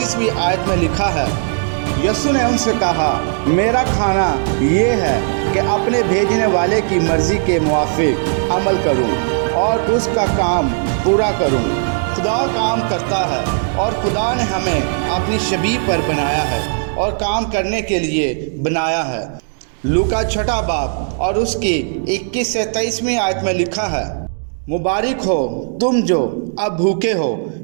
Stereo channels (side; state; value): left; silent; digital silence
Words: آیت میں لکھا ہے، یسوع نے ان سے کہا، میرا کھانا یہ ہے کہ اپنے بھیجنے والے کی مرضی کے موافق عمل کروں اور اس کا کام پورا کروں۔ خدا کام کرتا ہے اور خدا نے ہمیں اپنی شبیہ پر بنایا ہے اور کام کرنے کے لیے بنایا ہے۔ لوکا 6 باب اور اس کی 21 سے 23 آیت میں لکھا ہے، مبارک ہو تم جو اب بھوکے ہو